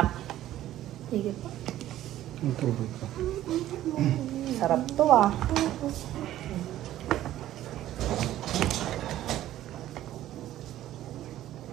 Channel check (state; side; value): quieter; left; 13.4 dB